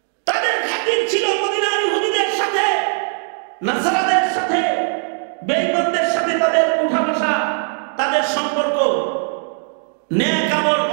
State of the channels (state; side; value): silent; left; 60 dB below the other